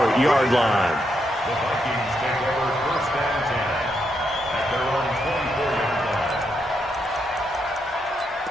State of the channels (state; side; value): normal; both; correlation 0.80